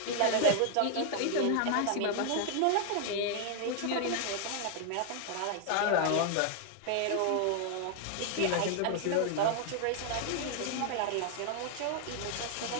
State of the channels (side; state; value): both; different; correlation 0.00